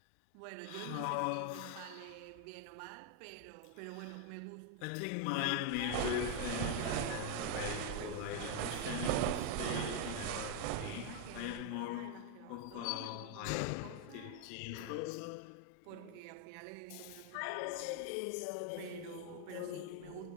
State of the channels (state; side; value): different; both; correlation 0.01